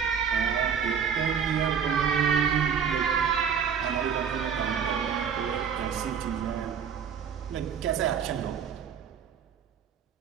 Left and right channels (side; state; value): left; quieter; 7.4 dB